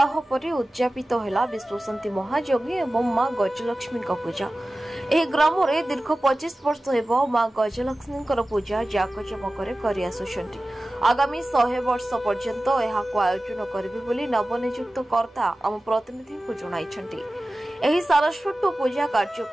पर उद्यापित है विश्वशांति महायज्ञ एवं मां गजलक्ष्मी पूजा। यह ग्राम में दीर्घ 25 वर्ष हो मां गजलक्ष्मी पूजा जाकजमक आगामी 100 वर्ष पर्यंत आयोजन करेंगे नवनियुक्त कर्ता आम प्रतिनिधि को जणाइछन्ति। एही सारस्वत पूजा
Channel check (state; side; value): normal; both; correlation 0.96